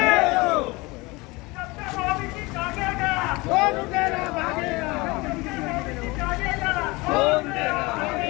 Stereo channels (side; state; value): right; quieter; 23.8 dB